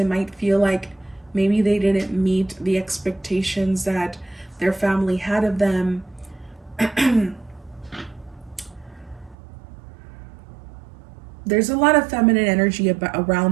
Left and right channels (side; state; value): left; drops out; at 9.3 s